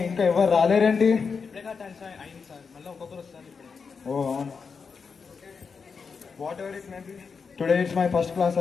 ఇంకా ఎవరు రాలేరేంటి? ఓ అవును. Whatever it may be, today it's my first class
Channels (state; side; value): quieter; right; 5.5 dB